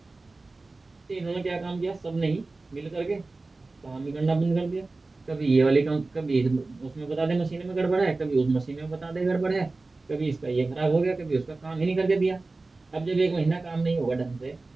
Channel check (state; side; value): quieter; left; 3.4 dB